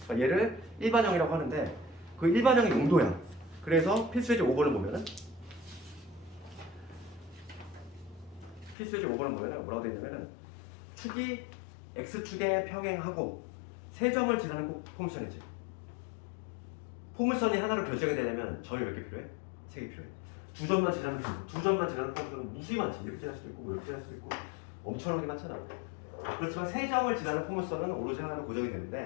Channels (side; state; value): right; drops out; at 8.8 s